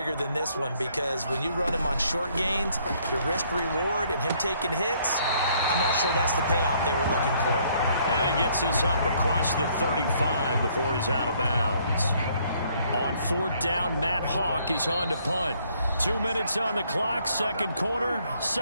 than this one, because when you run him on short gains, your risk-reward and him taking hits, I'm not sure that's the payoff they were looking for. And he gets this up across the 35 before he's out of bounds. On 4th down, Matt Hawk is on to punt. 2 minutes on the clock, 2nd quarter,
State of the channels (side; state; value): both; inverted; correlation -0.65